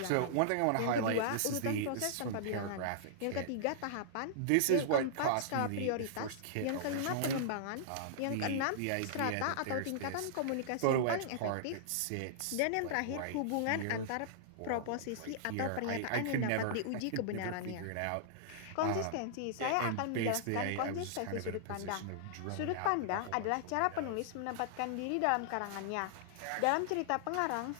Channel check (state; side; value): different; both; correlation -0.01